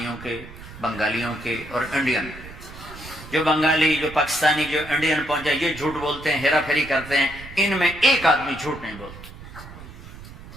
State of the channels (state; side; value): noise; right; rumble, 15 dB below the sound